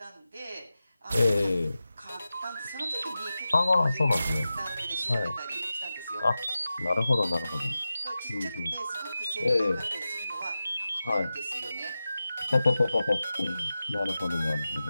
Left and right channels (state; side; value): inverted; both; correlation -0.94